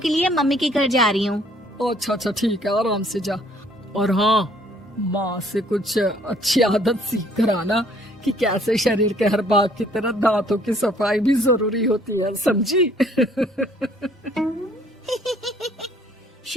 लिए मम्मी के घर जा रही हूँ। अच्छा अच्छा ठीक है, आराम से जा। और हाँ, माँ से कुछ अच्छी आदत सीख कर आना कि कैसे शरीर के हर भाग की तरह दांतों की सफाई भी जरूरी होती है, समझी?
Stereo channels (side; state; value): both; normal; correlation 0.60